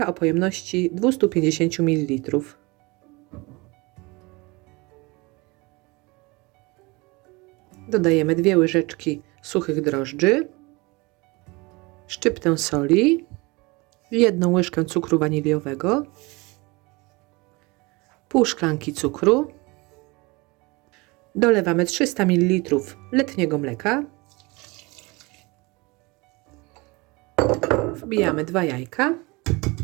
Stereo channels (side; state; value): left; quieter; 25.1 dB